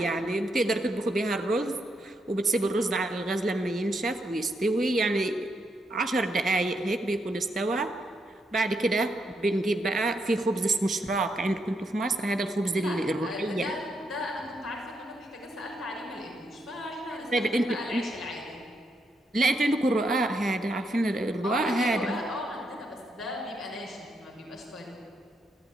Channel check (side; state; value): both; normal; correlation 0.79